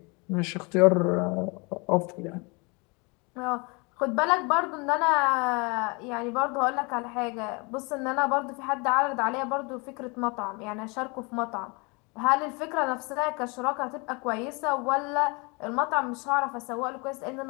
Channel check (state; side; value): quieter; right; 29.6 dB